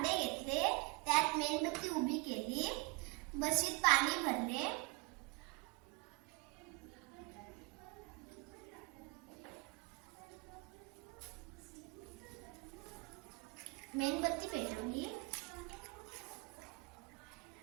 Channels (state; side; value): quieter; left; 26.6 dB